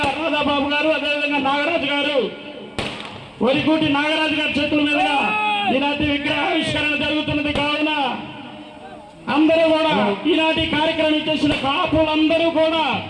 రాధాబాబు గారు, అదేవిధంగా నాగరాజు గారు, వరికూటి నాగరాజు గారి చేతుల మీదుగా ఈనాటి విగ్రహావిష్కరణ జరుగుతున్నది కావున అందరూ కూడా ఈనాటి కార్యక్రమం చేసిన కాపులందరూ కూడా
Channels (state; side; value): identical; both; correlation 1.00